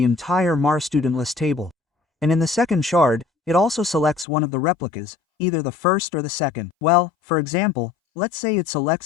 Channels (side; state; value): right; drops out; at 4.2 s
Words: entire Mars Student List table. And in the second shard, it also selects one of the replicas, either the first or the second. Well, for example, let's say it